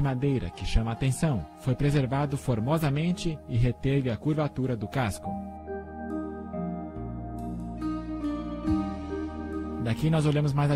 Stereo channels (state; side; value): identical; both; correlation 1.00